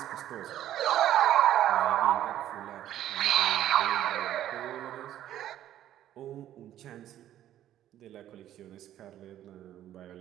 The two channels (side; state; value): left; quieter; 12.1 dB